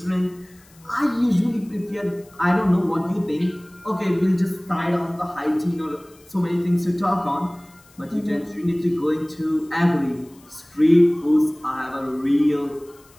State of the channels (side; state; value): left; noise; hiss, 28 dB below the sound